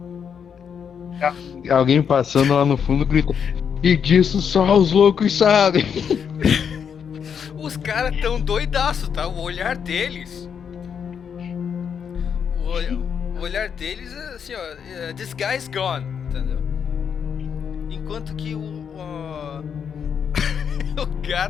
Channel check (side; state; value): right; quieter; 7.3 dB